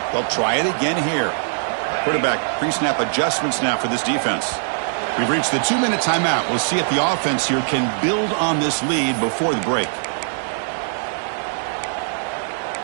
They'll try it again here. Quarterback pre-snap adjustments now for this defense. We've reached the 2-minute timeout. We'll see if the offense here can build on this lead before the break.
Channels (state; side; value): silent; left; digital silence